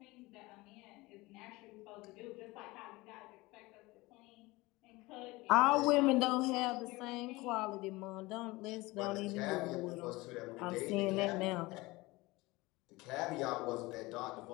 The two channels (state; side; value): quieter; right; 21.6 dB